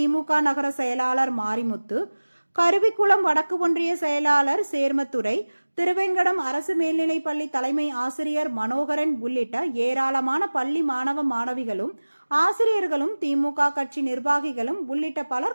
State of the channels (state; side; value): inverted; both; correlation -1.00